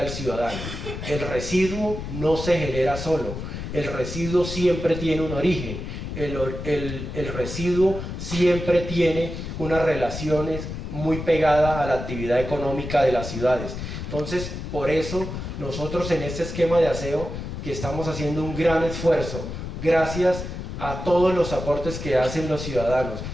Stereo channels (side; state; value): left; noise; rumble, 7 dB below the sound